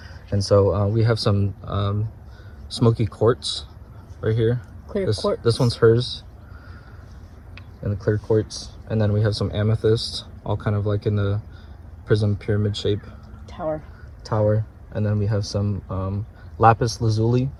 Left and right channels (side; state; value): both; identical; correlation 1.00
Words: And so we have some smoky quartz right here. Quartz. This one's hers, and the clear quartz. And then we have some amethyst, all kind of like in the prism pyramid shape. Tower. And then we have some lapis lazuli.